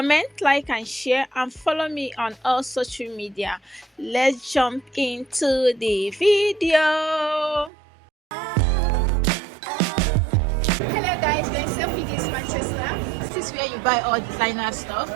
like and share, and follow me on all social media. Let's jump into the video. Hello guys, we're in Selfridges Manchester. This is where you buy all designer stuff.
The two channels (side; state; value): left; drops out; at 7.7 s